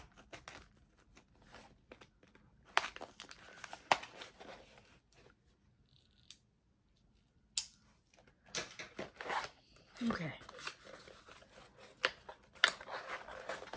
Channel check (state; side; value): identical; both; correlation 1.00